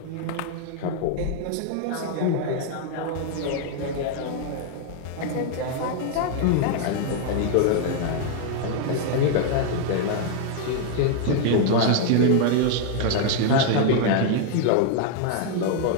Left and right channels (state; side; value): different; both; correlation 0.00